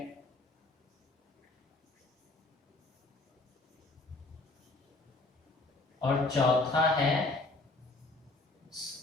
और चौथा है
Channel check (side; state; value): right; quieter; 3.1 dB